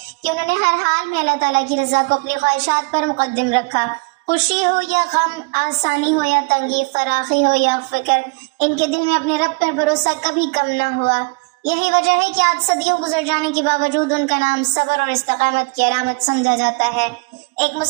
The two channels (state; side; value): quieter; left; 30.1 dB